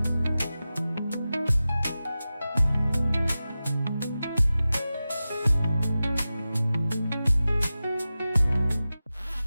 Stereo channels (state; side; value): inverted; both; correlation -0.95